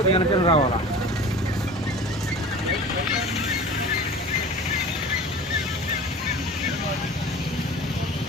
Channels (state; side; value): normal; both; correlation 0.39